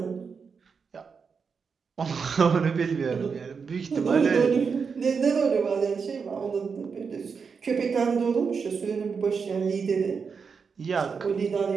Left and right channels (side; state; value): left; quieter; 5.7 dB